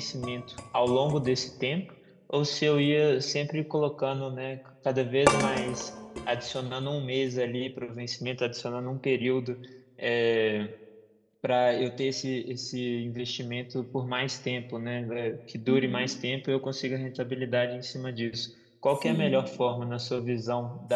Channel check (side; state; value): both; identical; correlation 1.00